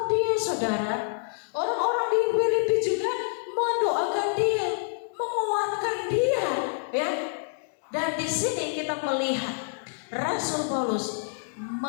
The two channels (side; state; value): right; silent; digital silence